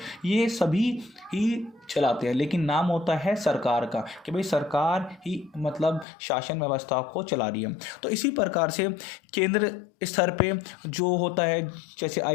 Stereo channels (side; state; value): right; drops out; at 6.1 s